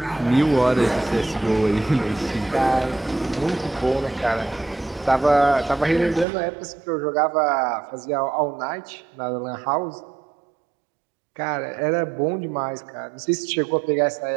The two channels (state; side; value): drops out; left; at 6.2 s